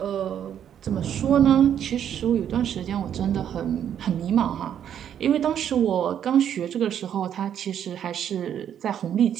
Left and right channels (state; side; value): quieter; left; 9.4 dB